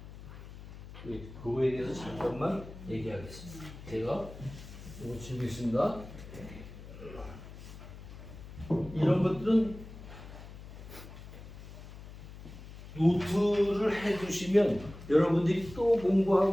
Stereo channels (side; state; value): left; noise; hum, 14 dB below the sound